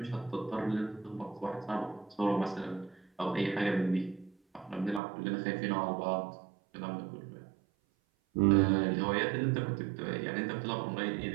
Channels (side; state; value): left; drops out; at 5.0 s